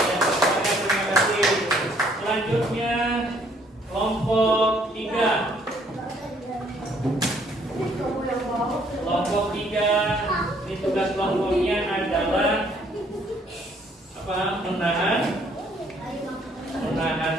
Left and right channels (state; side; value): normal; both; correlation 0.64